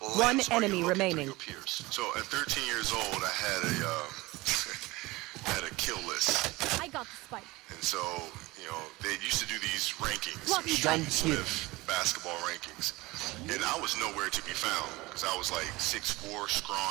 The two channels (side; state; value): left; quieter; 21.2 dB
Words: One enemy remaining. So at 13 years old, I had a kill list. I got the spike. And so, you know, they used to do these rankings, Lucky Street Smith basketball rankings. And I was nowhere to be found because I was like 6'4",